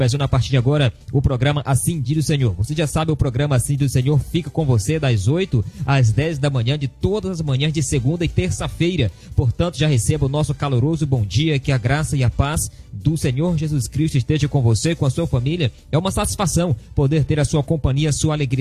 a partir de agora o programa Assim do Senhor. Você já sabe, o programa Assim do Senhor fica com você das 8 às 10 da manhã, de todas as manhãs de segunda e terça-feira, portanto já receba o nosso caloroso bom dia, que a graça e a paz do Senhor Jesus Cristo esteja com você, com a sua família. É uma satisfação poder ter a sua companhia, a sua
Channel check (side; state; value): both; identical; correlation 1.00